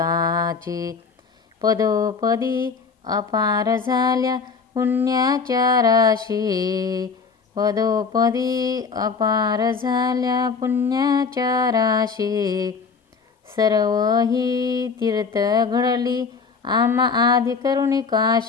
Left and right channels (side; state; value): right; quieter; 5.2 dB